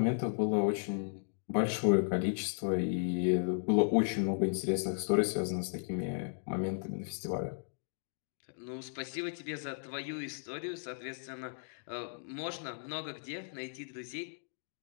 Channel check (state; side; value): silent; right; digital silence